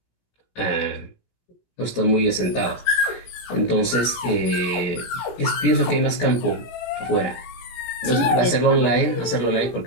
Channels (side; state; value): right; late; 17 ms